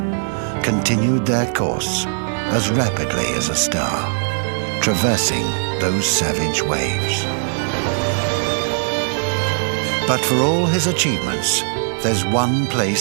continued their course as rapidly as a star, traversing those savage waves. But for all his achievements, there's one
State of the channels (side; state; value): left; silent; digital silence